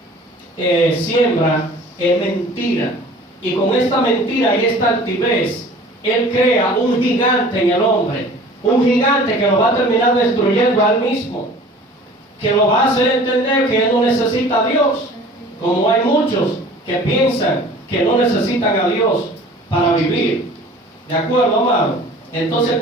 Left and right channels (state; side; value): normal; both; correlation 0.46